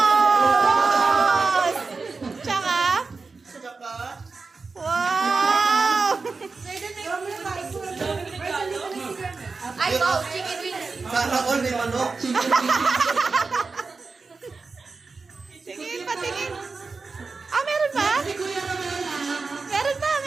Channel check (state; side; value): quieter; left; 4.3 dB